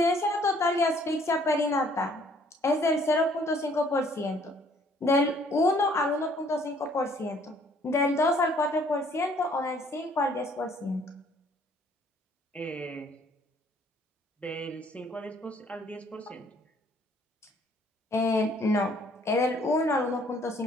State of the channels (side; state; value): both; normal; correlation 0.61